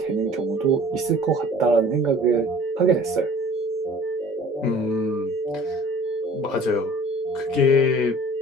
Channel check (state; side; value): normal; both; correlation 0.48